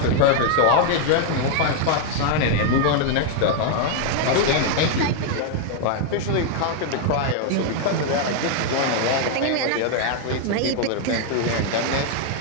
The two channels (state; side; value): different; both; correlation 0.00